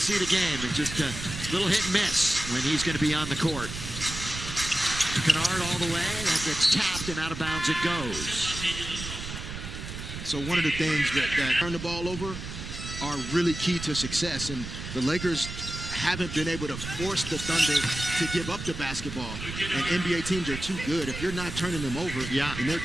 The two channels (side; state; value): right; noise; rumble, 8 dB below the sound